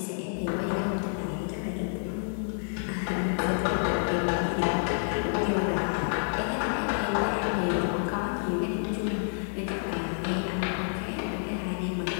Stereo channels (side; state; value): right; silent; digital silence